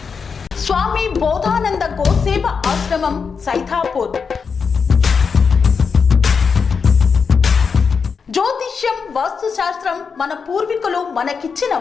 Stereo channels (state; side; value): quieter; right; 5.7 dB